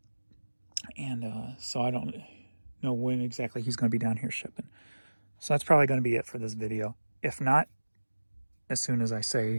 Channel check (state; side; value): inverted; both; correlation -1.00